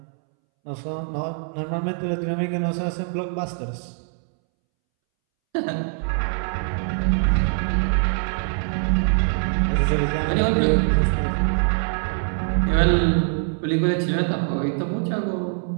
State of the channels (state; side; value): silent; left; 63 dB below the other